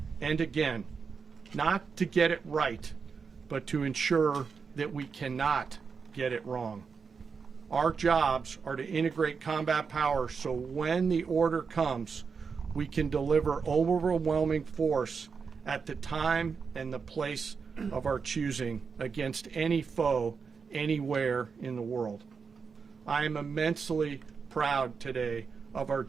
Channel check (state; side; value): quieter; left; 5.5 dB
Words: and again, not to get it right, but to ensure that we cannot get it wrong. Our jobs are to integrate combat power so when the order comes, we can deliver overwhelming force at the time and the place of our choosing against any foe anywhere in the world. I am immensely proud today of our